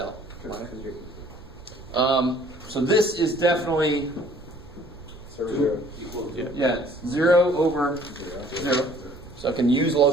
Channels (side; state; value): right; noise; rumble, 18 dB below the sound